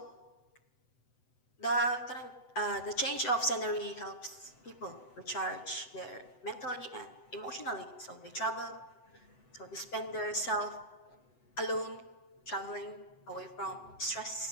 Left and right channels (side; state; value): right; late; 7.9 ms